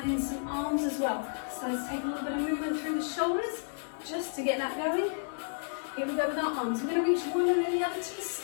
in some arms as well. So let's take a little bit of movement through the shoulders just to get that going. Here we go with our arms. We're going to reach one and then the other to the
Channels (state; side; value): silent; right; digital silence